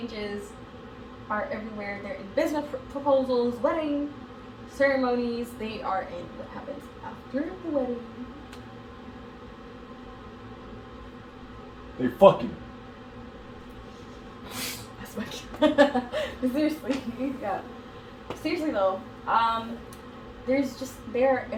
are everywhere. They're in business proposals, wedding ceremonies. They are in what happens after the wedding. They fucking. Seriously, yeah. Seriously though, they're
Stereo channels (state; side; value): identical; both; correlation 1.00